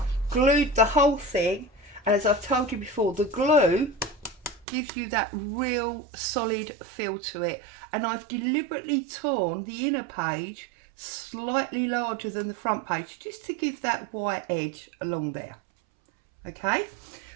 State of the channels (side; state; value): left; drops out; at 4.7 s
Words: glued the whole thing, and as I've told you before, the glue gives you that real solid feel to it. And I've deliberately torn the inner page slightly larger than the front page, just to give that white edge along there. Okay,